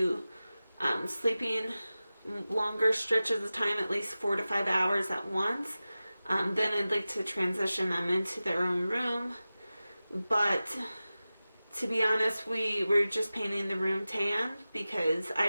sleeping longer stretches of time, at least 4 to 5 hours at once, then I'd like to transition them into their own room. But to be honest, we're just painting the room tan because I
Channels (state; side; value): inverted; both; correlation -0.95